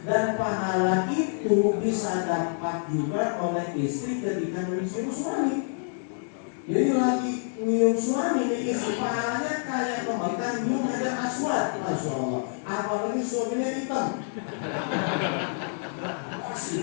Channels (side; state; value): right; silent; digital silence